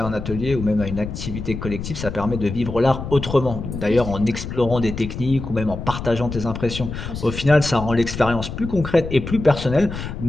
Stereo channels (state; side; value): noise; left; rumble, 7 dB below the sound